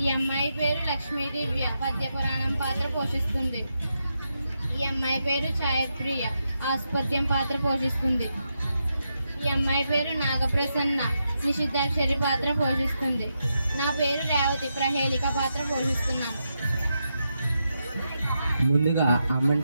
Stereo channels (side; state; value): both; inverted; correlation -0.85